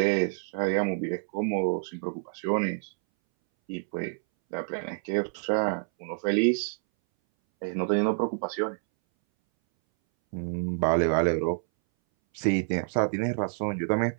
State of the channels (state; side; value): silent; left; 59 dB below the other